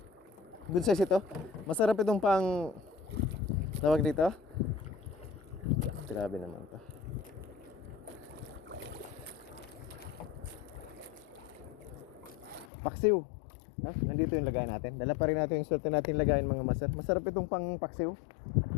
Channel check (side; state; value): right; drops out; at 12.7 s